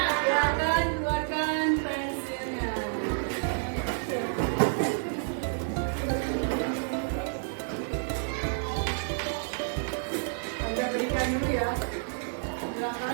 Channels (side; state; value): left; silent; digital silence